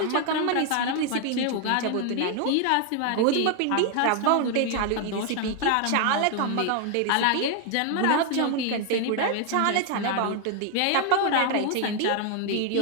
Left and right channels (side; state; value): both; different; correlation 0.00